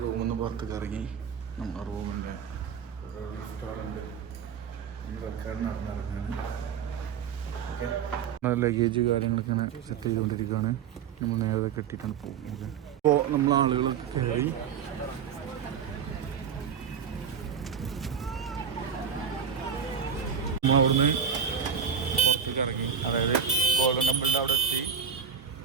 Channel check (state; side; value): quieter; left; 7.2 dB